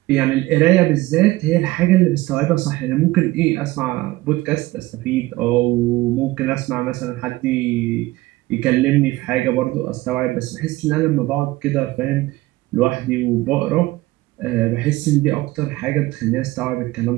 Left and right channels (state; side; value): quieter; left; 18.8 dB